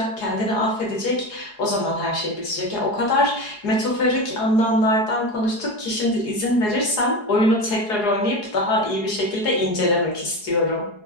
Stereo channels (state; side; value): late; right; 4.8 ms